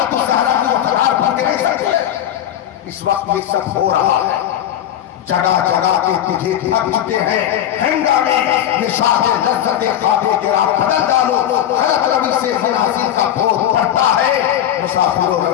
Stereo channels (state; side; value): quieter; right; 11.0 dB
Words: الزہرا کی وقار بھر کے نہیں سکتے؟ اس وقت یہ سب ہو رہا ہے. جگہ جگہ کے تجھے تھکتے ہیں ہنگامے نشاط لذت خوابے کے راہ بدل ڈالو. غلط روی سے منازل کا بھوت پڑتا ہے، مسافروں